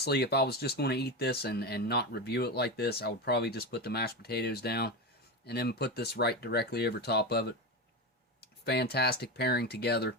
if I was just going to eat this and not review it like this, I would probably just put the mashed potatoes down and then put this right directly over top of it. Fantastic pairing together.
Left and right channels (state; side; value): normal; both; correlation 0.18